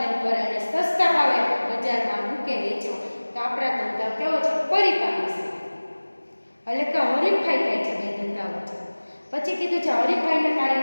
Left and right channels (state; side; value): inverted; both; correlation -1.00